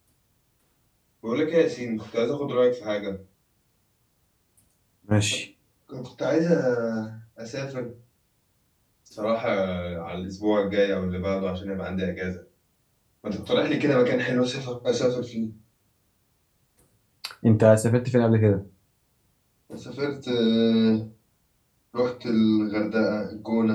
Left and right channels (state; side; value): identical; both; correlation 1.00